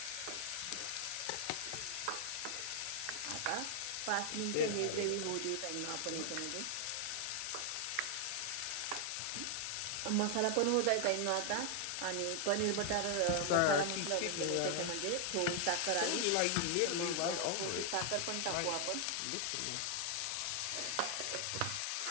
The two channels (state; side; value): different; both; correlation 0.00